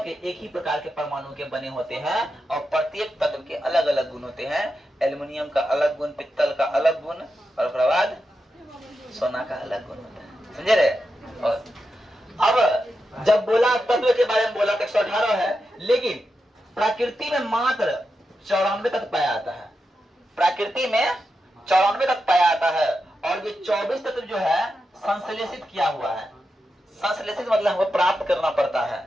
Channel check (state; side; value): normal; both; correlation 0.88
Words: के? एक ही प्रकार के परमाणु के बने होते हैं और प्रत्येक तत्व के अलग अलग गुण होते हैं। एल्युमिनियम का अलग गुण, पित्तल का अलग गुण और उसके बाद सोना का अलग गुण होता है। समझे रहे? और अब जब बोला तत्व के बारे में बोला तो 118 है, लेकिन प्रकृति में मात्र 94 तत्व पाया जाता है। प्रकृति में 94 तत्व पाया जाता है और ये 24 तत्व जो है संश्लेषित किया हुआ है। संश्लेषित मतलब हमको प्राप्त करना पड़ता